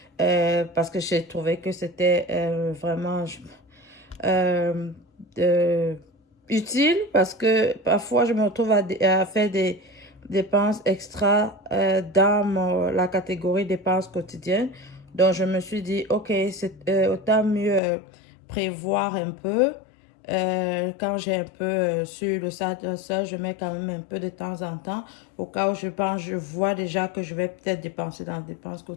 parce que j'ai trouvé que c'était vraiment euh, euh, utile parce que parfois, je me retrouve à faire des dépenses extra dans la catégorie dépenses quotidiennes. Donc, je me suis dit, OK, c'est autant mieux prévoir un peu. Quand j'ai un peu sur le site seul, je mets quand même un peu de temps en temps au cas où je pense, je vois déjà que je vais peut-être dépenser dans les dépenses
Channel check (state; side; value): drops out; right; at 17.8 s